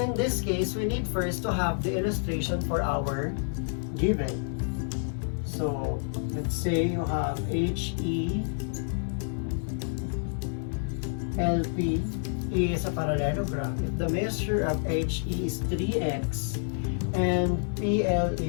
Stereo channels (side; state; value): right; silent; 59 dB below the other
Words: this case, we need first to have the illustration for our given. So, let's say you have HE LP is a parallelogram. If the measure of HE is 3x and PL